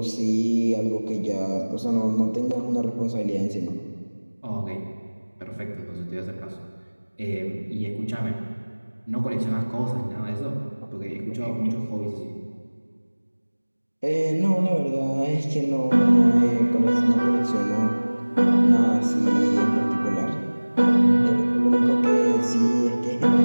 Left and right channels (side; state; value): both; inverted; correlation -1.00